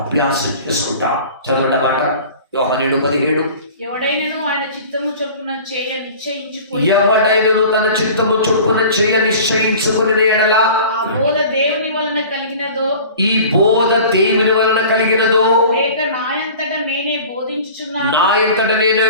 అభ్యాసం చేసుకుంటాం. చదవండి మాట యోహాను 7:17. ఎవడైనను ఆయన చిత్తము చొప్పున చేయ నిశ్చయించుకొని, ఎవడైనను తన చిత్తము చొప్పున చేయ నిశ్చయించుకుని ఎడల ఆ బోధ దేవుని వలన కలిగినదో, ఈ బోధ దేవుని వలన కలిగినదో, లేక నాయంతట నేనే బోధించుచున్నాను, నా ఎంతట నేనే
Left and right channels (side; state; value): both; inverted; correlation -0.42